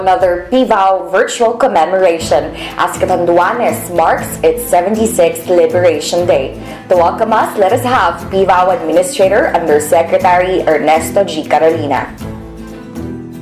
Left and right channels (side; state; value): both; identical; correlation 1.00